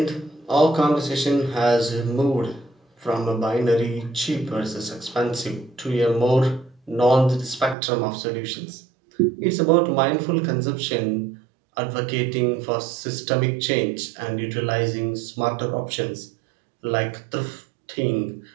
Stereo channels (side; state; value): left; drops out; at 7.8 s